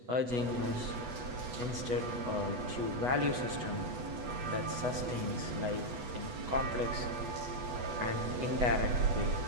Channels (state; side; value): late; left; 8.1 ms